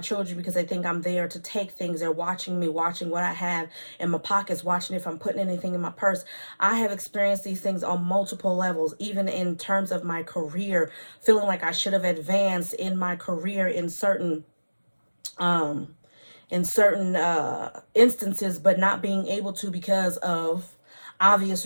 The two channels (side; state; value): both; inverted; correlation -1.00